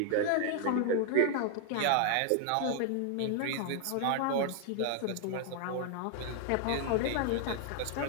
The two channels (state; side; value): different; both; correlation 0.00